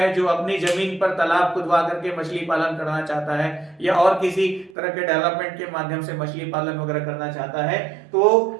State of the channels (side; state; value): left; drops out; at 4.7 s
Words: जो अपनी जमीन पर तालाब खुदवा करके मछली पालन करना चाहता है, या और किसी तरह के डेवलपमेंट के माध्यम से मछली पालन वगैरह करना चाहता है,